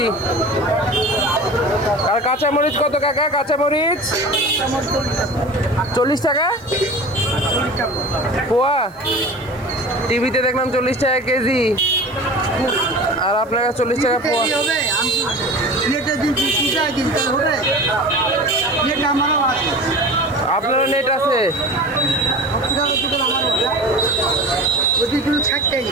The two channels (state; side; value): noise; right; hiss, 29 dB below the sound